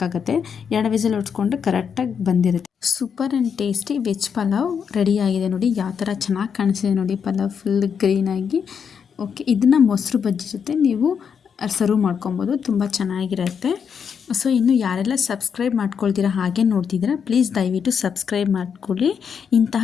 2 ವಿಸಿಲ್ ಹೊಡ್ಸ್ಕೊಂಡ್ರೆ ಕರೆಕ್ಟಾಗಿ ಬಂದಿರುತ್ತೆ. Super and tasty veg pulao ರೆಡಿಯಾಗಿದೆ. ನೋಡಿ ಯಾವ ಥರ ಚೆನ್ನಾಗಿ ಕಾಣಿಸಿದೆ ನೋಡಿ, ಪಲಾವ್ ಫುಲ್ ಗ್ರೀನಾಗಿ. ಓಕೆ, ಇದನ್ನು ಮೊಸರು ಬಜ್ಜಿ ಜೊತೆ ನೀವು ಸರ್ವ್ ಮಾಡ್ಕೊಬೋದು, ತುಂಬ ಚೆನ್ನಾಗಿರುತ್ತೆ. ಸೊ ಇನ್ನು ಯಾರೆಲ್ಲ ಸಬ್ಸ್ಕ್ರೈಬ್ ಮಾಡ್ಕೊಳ್ತೀರಾ ಹಾಗೆ ನೋಡ್ತಿದ್ದೀರಾ, ಪ್ಲೀಸ್ ದಯವಿಟ್ಟು ಸಬ್ಸ್ಕ್ರೈಬ್ ಮಾಡ್ಕೊಳ್ಳಿ.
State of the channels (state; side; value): quieter; right; 6.9 dB